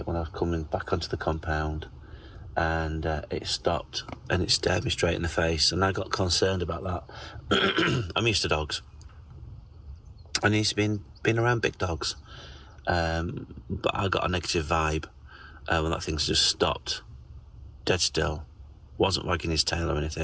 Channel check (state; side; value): identical; both; correlation 1.00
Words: when I was coming back onto the compound, and it stopped and it stared me straight in the face, and I got concerned about that. I'm used to dogs. I'm used to being around big dogs. But I got a negative vibe when that thing's just stopped, dead still, wasn't wagging his tail or